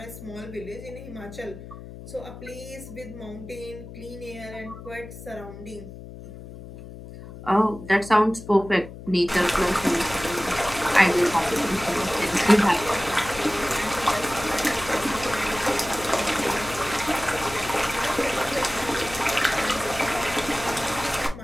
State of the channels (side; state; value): left; noise; hum, 14 dB below the sound